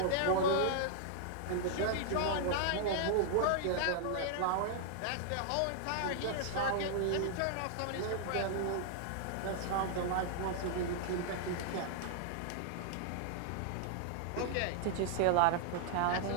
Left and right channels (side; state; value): both; different; correlation -0.01